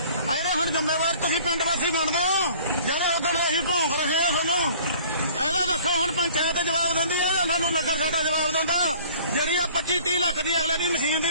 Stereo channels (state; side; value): inverted; both; correlation -0.51